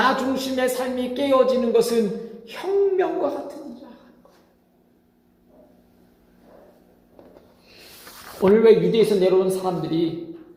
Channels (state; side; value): identical; both; correlation 1.00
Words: 중심의 삶이 깨어지는 것은 혁명과 같은 일이라는 거예요. 오늘 왜 유대에서 내려온 사람들이